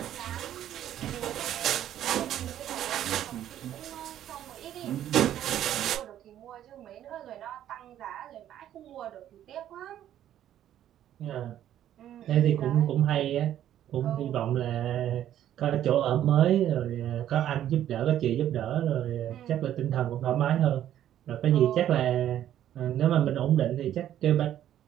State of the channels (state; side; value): quieter; left; 11.4 dB